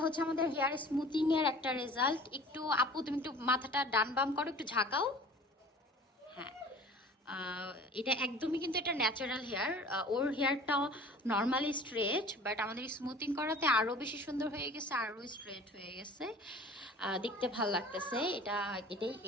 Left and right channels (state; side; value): normal; both; correlation 0.45